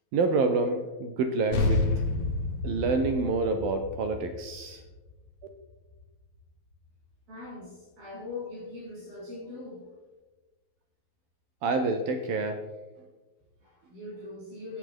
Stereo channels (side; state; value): left; late; 12 ms